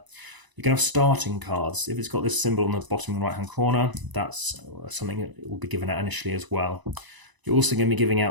You can have starting cards. If it's got this symbol on the bottom right-hand corner, that's something that will be given out initially as well. You're also going to be giving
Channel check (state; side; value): late; left; 1.0 ms